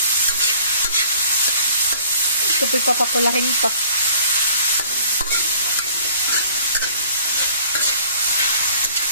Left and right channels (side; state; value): both; inverted; correlation -0.54